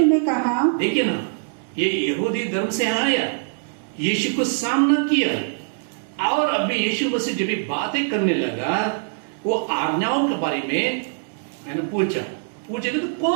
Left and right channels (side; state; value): left; silent; 64 dB below the other